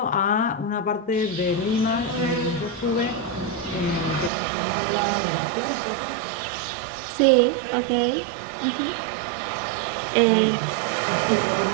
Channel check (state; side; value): drops out; left; at 4.3 s